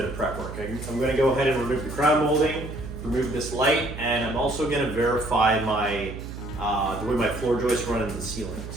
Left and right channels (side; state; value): right; noise; hum, 10 dB below the sound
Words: of prep work. I'm going to go ahead and remove the crown molding, remove this light, and I'm also going to verify my the way my floor joists run in the ceiling.